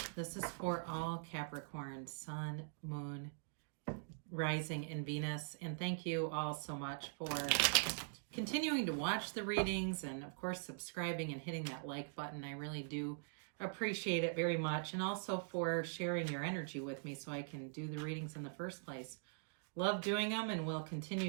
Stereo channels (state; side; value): silent; left; digital silence